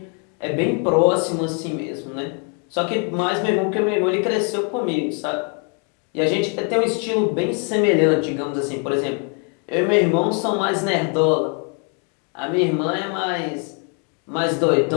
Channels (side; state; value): right; quieter; 39.4 dB